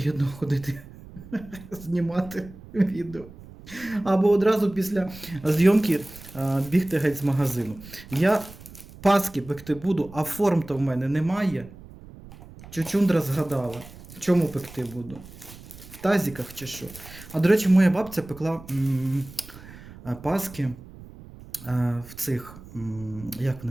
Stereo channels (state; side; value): noise; right; rumble, 18 dB below the sound